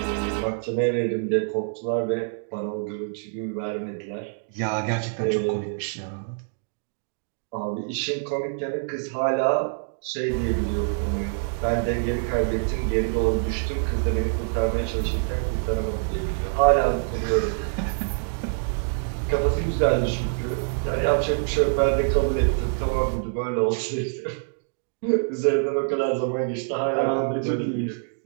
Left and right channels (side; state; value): left; silent; digital silence